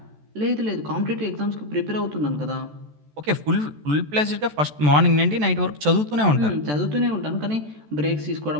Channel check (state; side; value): late; left; 14 ms